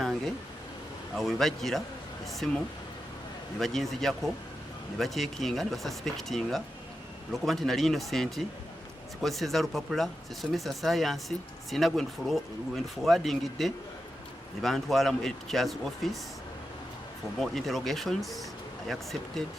Awo we bajjira essimu ne baginzijako ne baceekinga ne basuspectinga olwokuba nti nali innocent, sikozeseza lupapula, sisomesa saayansi, sina gwe nduforwardingidde. Ne bantwala mu teacher's office for more interrogations. I accepted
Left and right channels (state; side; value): normal; both; correlation 0.89